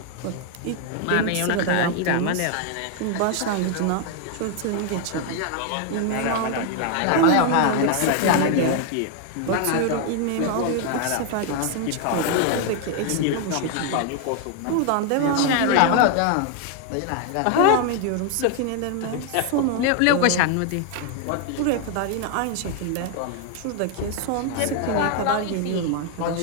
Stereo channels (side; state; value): both; different; correlation 0.00